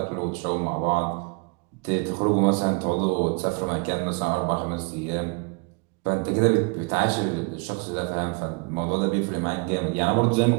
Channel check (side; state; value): left; quieter; 31.6 dB